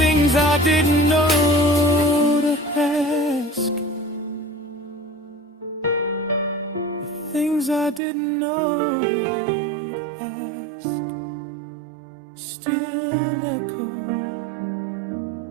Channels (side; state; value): left; drops out; at 8.0 s